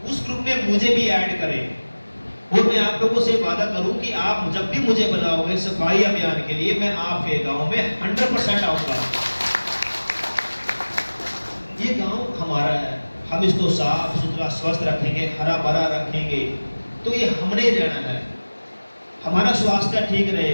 उस ग्रुप में मुझे भी ऐड करें। और मैं आप लोगों से वादा करूं कि आप जब भी मुझे बुलाओगे सफाई अभियान के लिए, मैं आपके गांव में 100% आऊंगा। ये गांव हमारा है, हम इसको साफ सुथरा स्वस्थ रखेंगे, हरा भरा रखेंगे, तो ये हमने रहना है। हमारा स्वास्थ्य ठीक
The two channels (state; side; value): inverted; both; correlation -1.00